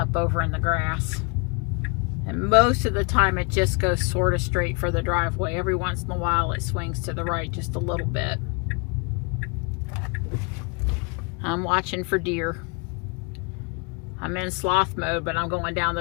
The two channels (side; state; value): right; quieter; 32.7 dB